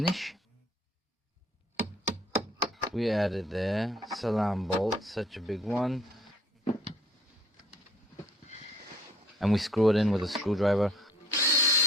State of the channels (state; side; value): normal; both; correlation 0.57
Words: We added there, salam bolt, such a big one. And we screw it in with a screwdriver.